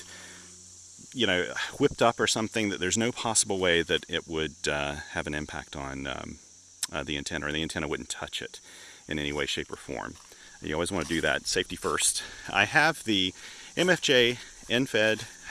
whipped up or something, that there's no possible way that it would have an impact on the antenna, or the antenna wouldn't touch it in any way, shape, or form. You always want to do that, safety first. I have the MFJ end-fed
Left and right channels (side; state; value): both; identical; correlation 1.00